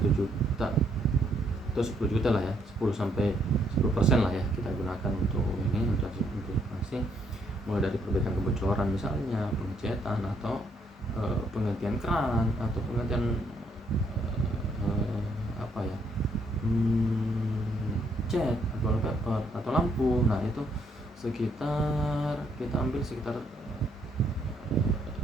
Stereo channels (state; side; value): normal; both; correlation 0.71